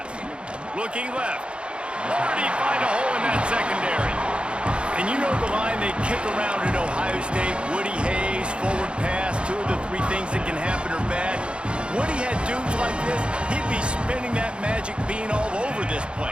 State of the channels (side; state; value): left; late; 0.056 ms